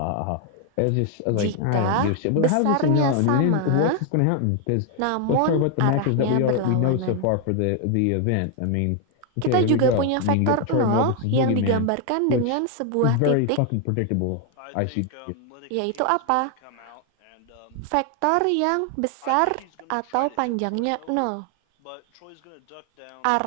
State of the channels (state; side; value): different; both; correlation 0.00